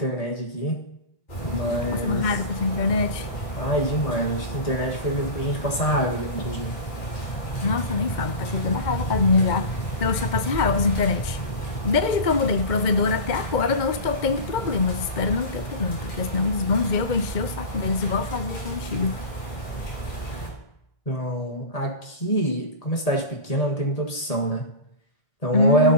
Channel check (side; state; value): right; late; 2.1 ms